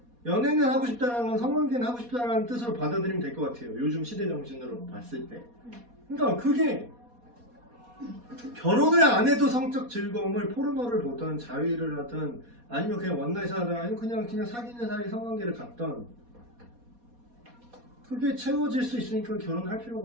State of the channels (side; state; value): left; late; 4.2 ms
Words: 연애는 하고 싶다는 건 성관계는 하고 싶다는 뜻으로 받아들이면 될 것 같아요. 요즘 시대 정신으로 봤을 때. 그러니까 그게 결혼을 안 해도 성적 즐거움을 포르노를 보던 자위를 하든 아니면 그냥 원나잇을 하든 아니면 그냥 사귀는 사이 성관계를 갖던 그게 채워질 수 있으니까 결혼할